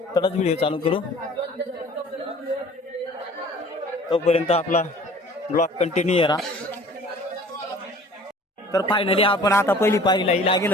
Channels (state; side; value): normal; both; correlation 0.48